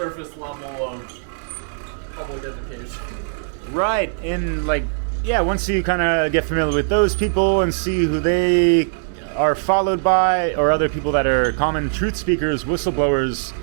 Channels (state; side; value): silent; left; digital silence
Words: level of public education. Right, and like, yeah, once you kind of get familiar with those people and see who they are followed by, or other people that are common truth speakers, whistleblowers,